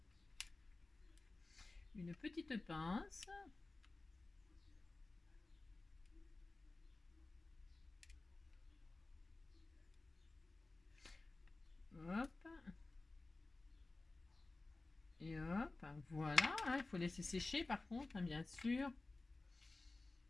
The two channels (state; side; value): quieter; right; 3.3 dB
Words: une petite pince. Hop. Et hop. Voilà. Hein, il faut laisser sécher par contre, hein, bien sûr.